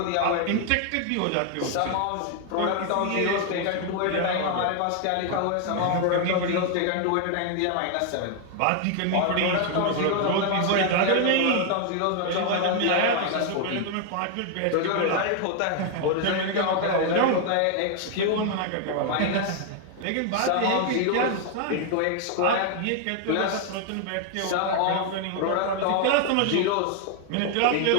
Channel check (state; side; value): different; both; correlation 0.00